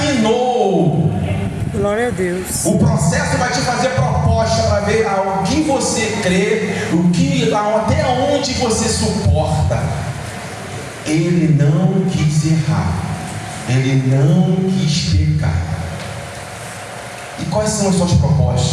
Glória a Deus. O processo vai te fazer proposta para ver ao que você crê, até onde você suporta. Ele não quis errar. Ele não quis pecar. E quais são as suas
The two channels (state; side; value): identical; both; correlation 1.00